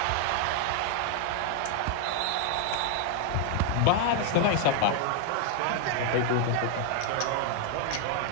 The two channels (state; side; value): different; both; correlation 0.00